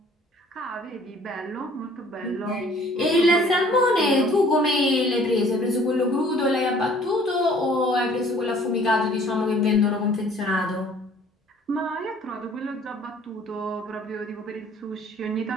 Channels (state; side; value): normal; both; correlation 0.55